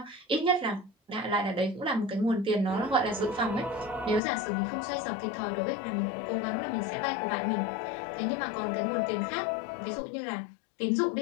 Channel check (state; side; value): drops out; right; at 4.2 s